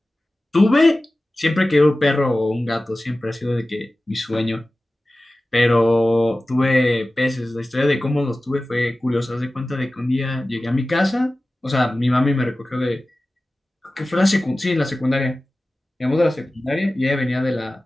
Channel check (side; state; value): both; normal; correlation 0.96